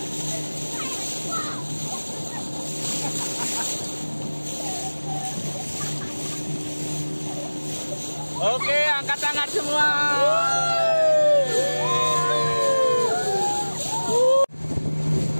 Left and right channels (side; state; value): both; inverted; correlation -1.00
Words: Oke, angkat tangan semua.